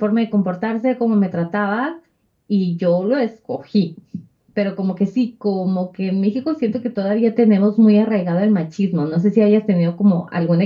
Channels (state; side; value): identical; both; correlation 1.00